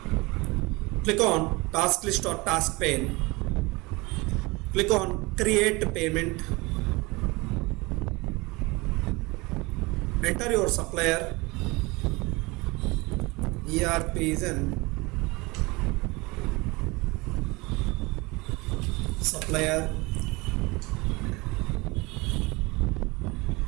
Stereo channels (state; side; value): quieter; left; 24.3 dB